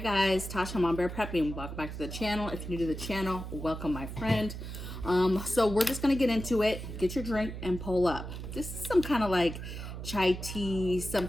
guys, Tasha, I'm on Bear Prepping. Welcome back to the channel. If you're new to the channel, welcome my friend. So we're just gonna get into it. Get your drink and pull up. This is some kind of like chai tea,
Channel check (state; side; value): noise; right; hum, 8 dB below the sound